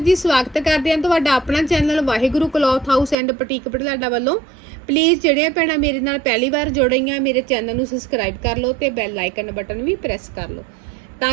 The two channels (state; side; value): drops out; left; at 3.2 s